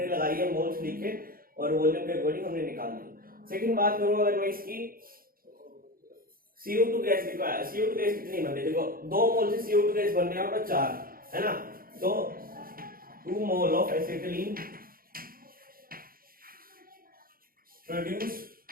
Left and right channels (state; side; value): late; left; 0.42 ms